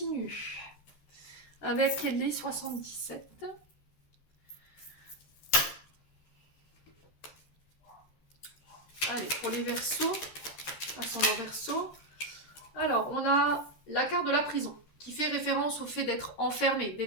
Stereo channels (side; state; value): right; late; 13 ms